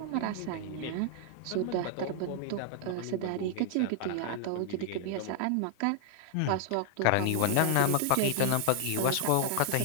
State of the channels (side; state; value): both; different; correlation 0.00